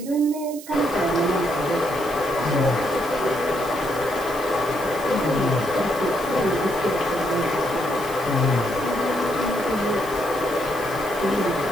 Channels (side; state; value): right; noise; hiss, 16 dB below the sound